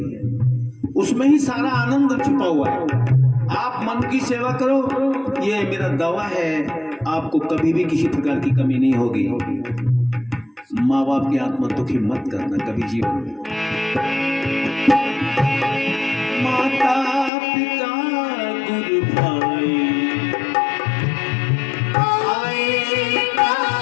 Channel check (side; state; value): right; drops out; at 17.3 s